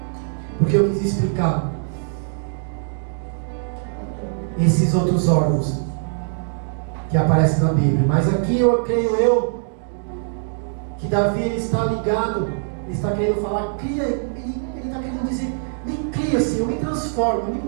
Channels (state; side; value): silent; left; digital silence